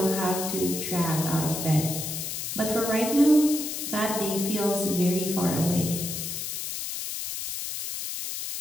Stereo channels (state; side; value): noise; left; hiss, 5 dB below the sound